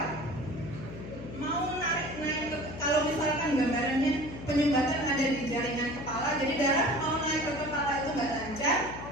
Mau naik kalau misalkan gambarannya penyumbatan ada di jaringan kepala, jadi darah mau naik ke kepala itu nggak lancar,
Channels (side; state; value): left; noise; hum, 11 dB below the sound